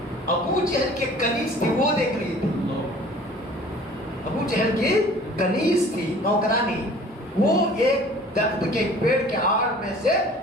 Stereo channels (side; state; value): both; normal; correlation 0.48